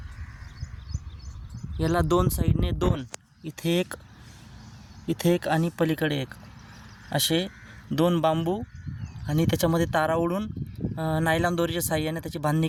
याला 2 साईडने 2, इथे एक आणि पलीकडे एक, असे 2 बांबू आणि त्याच्यामध्ये तारा ओढून नायलॉन दोरीच्या साहाय्याने त्याची बांधणी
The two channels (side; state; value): both; identical; correlation 1.00